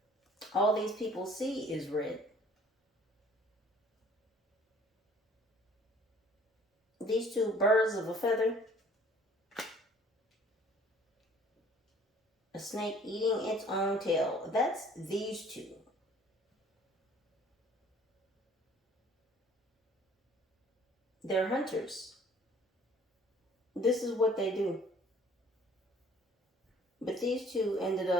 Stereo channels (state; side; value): normal; both; correlation 0.54